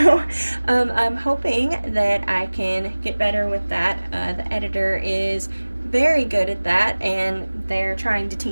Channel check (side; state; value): both; inverted; correlation -1.00